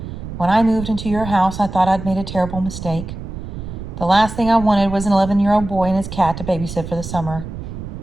when I moved into your house, I thought I'd made a terrible mistake. The last thing I wanted was an 11-year-old boy and his cat to babysit for the summer.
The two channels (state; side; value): noise; right; rumble, 9 dB below the sound